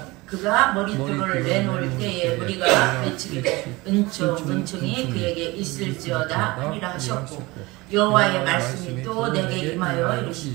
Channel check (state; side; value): quieter; left; 22.2 dB